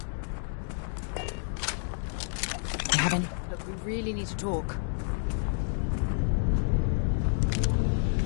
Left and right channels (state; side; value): silent; right; 58 dB below the other